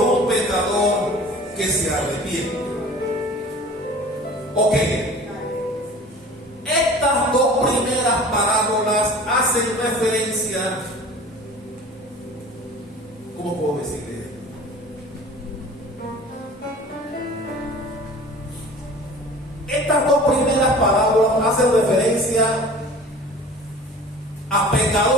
un pecador que se arrepiente. Ok, estas 2 primeras parábolas parábolas hacen referencia, ¿cómo puedo decirle? Estas dos primeras parábolas hacen referencia a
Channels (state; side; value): normal; both; correlation 0.43